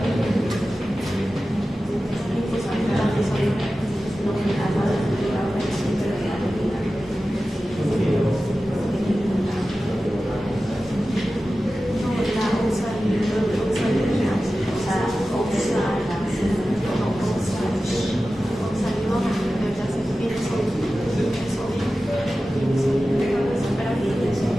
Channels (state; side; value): normal; both; correlation 0.94